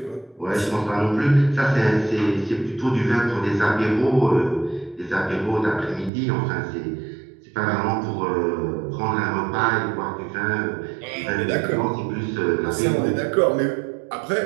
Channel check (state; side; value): drops out; left; at 6.1 s